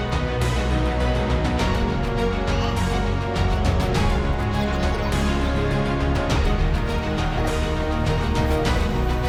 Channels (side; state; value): both; identical; correlation 1.00